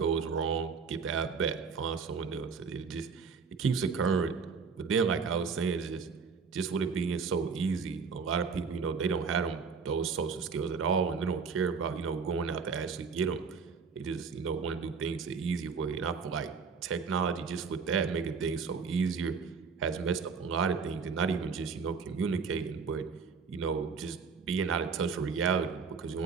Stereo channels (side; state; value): left; quieter; 5.4 dB